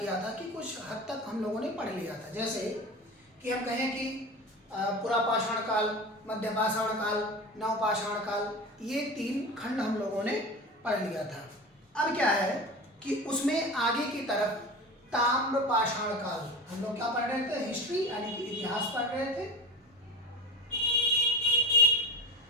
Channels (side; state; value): both; normal; correlation 0.30